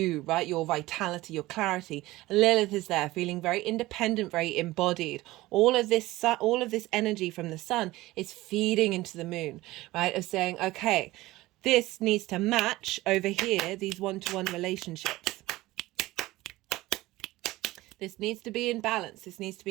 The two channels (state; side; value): quieter; left; 18.3 dB